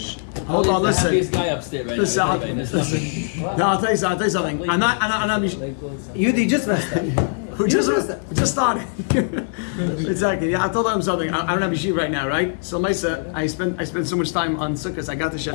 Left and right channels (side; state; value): right; silent; digital silence